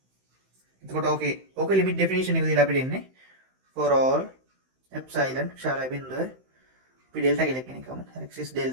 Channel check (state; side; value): late; left; 16 ms